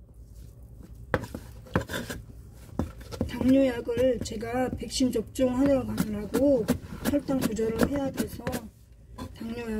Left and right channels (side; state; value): both; identical; correlation 1.00